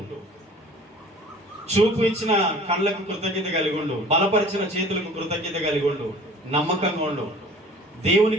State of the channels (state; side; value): normal; both; correlation 0.47